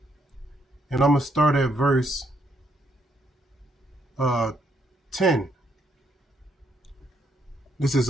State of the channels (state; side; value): normal; both; correlation 0.74